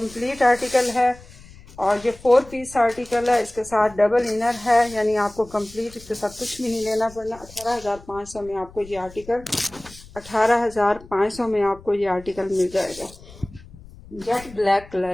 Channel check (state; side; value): noise; left; rumble, 20 dB below the sound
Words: आर्टिकल है, और ये 4 पीस आर्टिकल है, इसके साथ डबल इनर है, यानी आपको कंप्लीट इसके साथ कुछ भी नहीं लेना पड़ना। 18,500 में आपको ये आर्टिकल 18,500 में आपको ये आर्टिकल मिल जाएगा। जेट ब्लैक